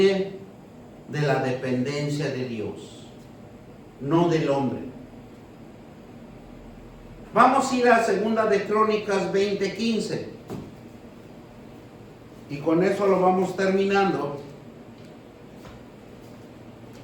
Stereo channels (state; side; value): identical; both; correlation 1.00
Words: de la dependencia de Dios, no del hombre. Vamos a ir a 2 de Crónicas 20:15 y con eso lo vamos terminando.